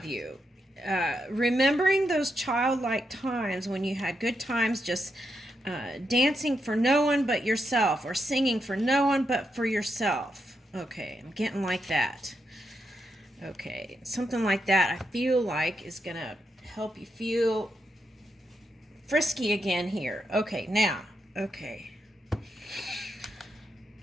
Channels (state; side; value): normal; both; correlation 0.83